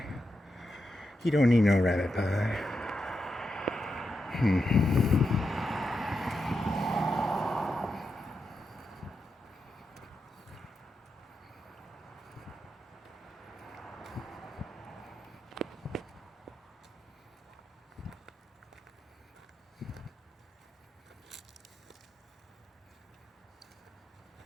He don't need no rabbit pie.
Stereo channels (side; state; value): both; normal; correlation 0.86